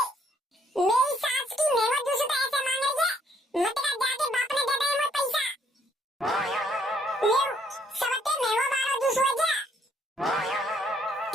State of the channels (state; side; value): normal; both; correlation 0.67